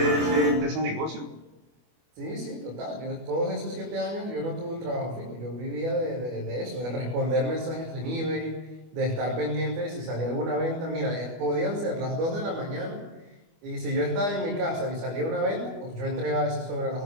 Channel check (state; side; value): late; left; 25 ms